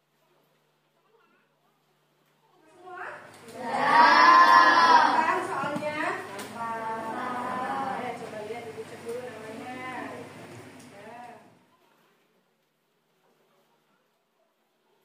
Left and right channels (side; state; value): both; identical; correlation 1.00